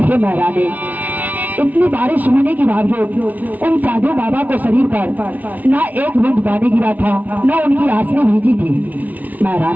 हे महारानी, इतनी बारिश होने के बावजूद उन साधु बाबा को शरीर पर ना एक बूंद पानी गिरा था, ना उनकी आंसू भीजी थी।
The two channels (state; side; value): late; left; 0.076 ms